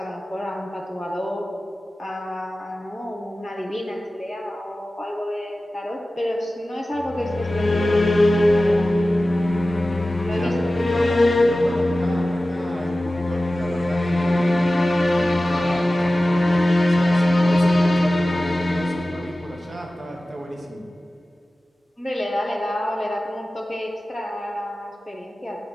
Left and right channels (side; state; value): both; normal; correlation 0.96